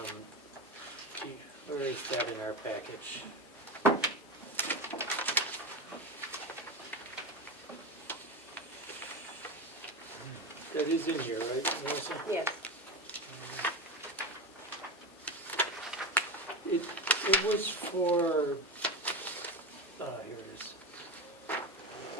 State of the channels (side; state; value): both; normal; correlation 0.20